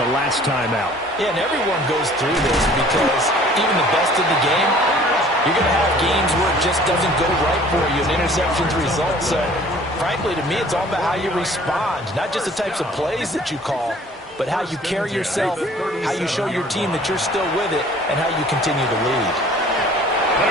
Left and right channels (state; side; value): normal; both; correlation 0.52